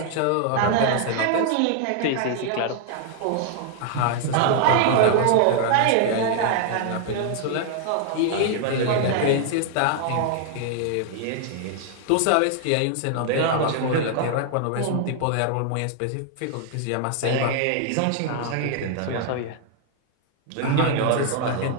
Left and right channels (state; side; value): different; both; correlation 0.00